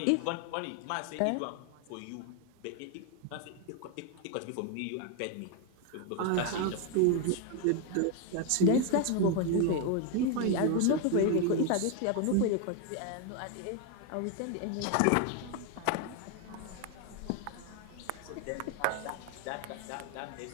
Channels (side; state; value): both; different; correlation 0.01